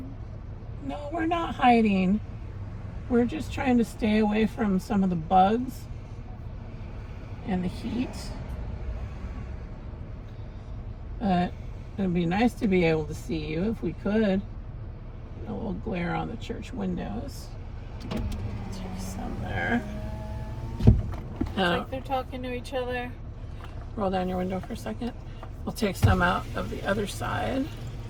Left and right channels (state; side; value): identical; both; correlation 1.00